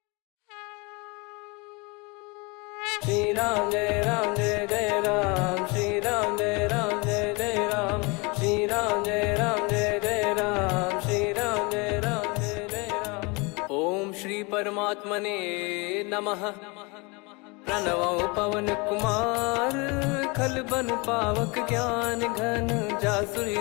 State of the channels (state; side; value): quieter; right; 28.4 dB